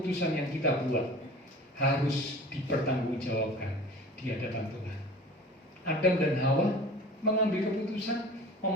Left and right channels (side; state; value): both; normal; correlation 0.41